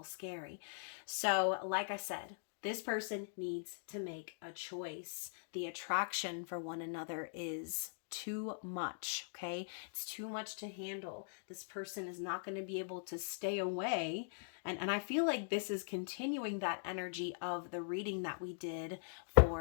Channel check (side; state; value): right; silent; digital silence